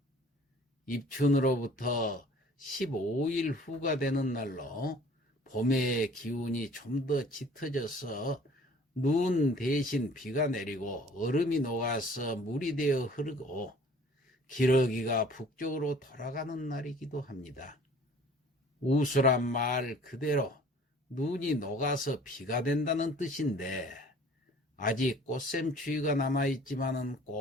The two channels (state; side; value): normal; both; correlation 0.51